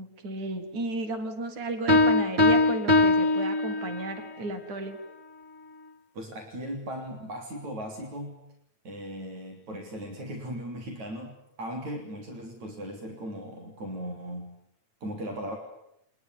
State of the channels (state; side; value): late; left; 9.0 ms